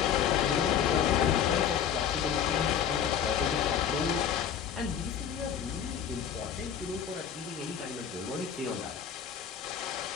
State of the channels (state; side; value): quieter; right; 8.4 dB